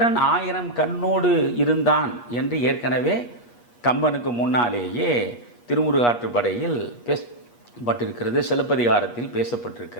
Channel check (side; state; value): right; late; 8.4 ms